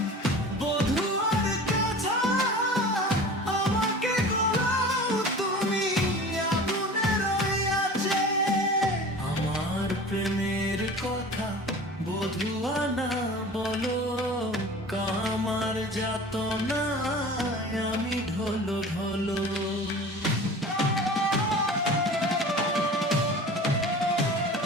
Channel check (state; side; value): normal; both; correlation 0.39